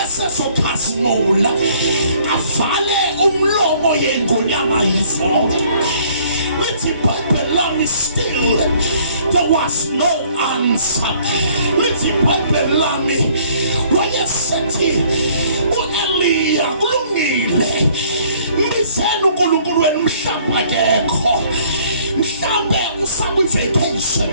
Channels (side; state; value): both; inverted; correlation -0.59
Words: avale umlomo yengonyama yizonke. Lithi iBhayibheli lami still there was no answer. Lithi iBhayibheli lami wayesethi uEliya kulungile mbizeni uNkulunkulu wenu mhlawumbe akekho, mhlawumbe usakwi-vacation,